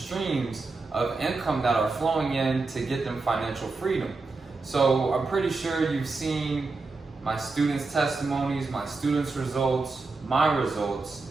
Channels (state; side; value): quieter; left; 3.8 dB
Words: of income that are flowing in to get them financial freedom. So I'm pretty sure you've seen my students' testimonies, my students' results, my results.